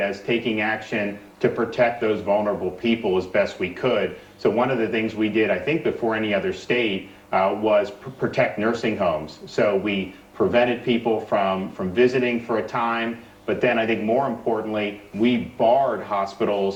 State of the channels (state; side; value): identical; both; correlation 1.00